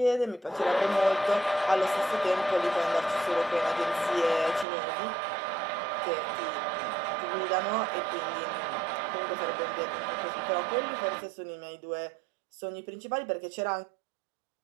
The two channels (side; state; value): left; drops out; at 4.7 s